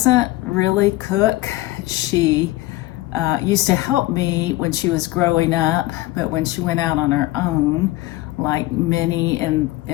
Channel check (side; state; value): right; quieter; 18.2 dB